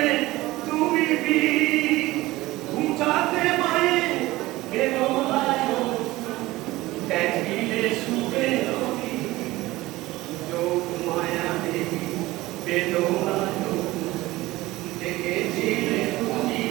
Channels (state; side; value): quieter; left; 18.6 dB